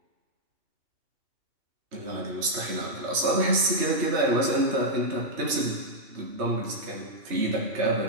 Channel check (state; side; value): late; left; 3.2 ms